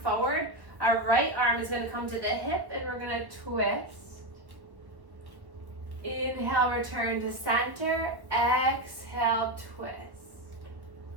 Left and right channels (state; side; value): late; left; 1.1 ms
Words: Our right arm is going to come to the hip and we're going to twist. Inhale, return to center. Exhale, twist.